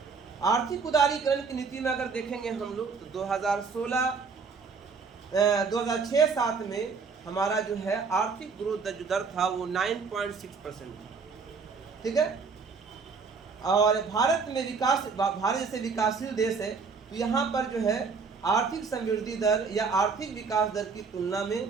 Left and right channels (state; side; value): quieter; left; 5.1 dB